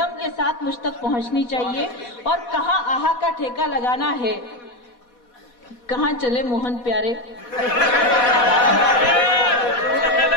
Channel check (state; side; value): late; right; 4.1 ms